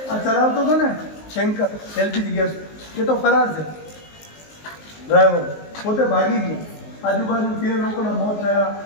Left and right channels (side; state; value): right; late; 19 ms